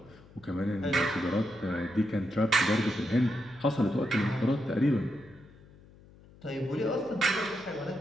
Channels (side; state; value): left; noise; hum, 24 dB below the sound